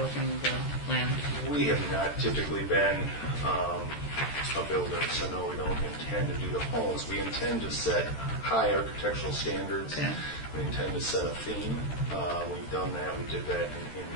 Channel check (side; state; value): right; late; 13 ms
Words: the land? We have not typically been a builder, so no, we don't intend to do the homes. We intend to set high architectural standards. Okay. We intend to set a theme. We've done that. We did that in